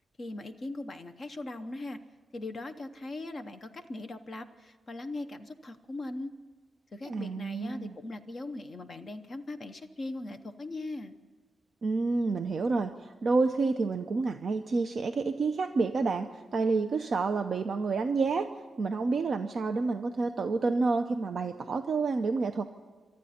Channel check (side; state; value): left; quieter; 3.1 dB